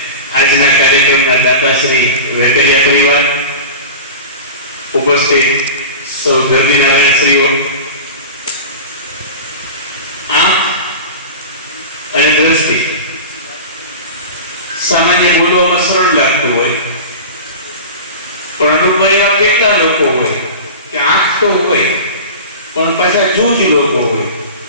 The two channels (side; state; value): both; inverted; correlation -0.32